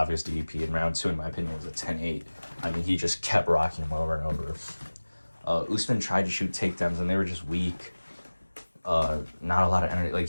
DDP, and round 2, in my opinion, was a 10-8. I mean, he just kept rocking him over and over. Usman tried to shoot takedowns, and they were just weak. Not a lot of energy.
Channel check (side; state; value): both; inverted; correlation -1.00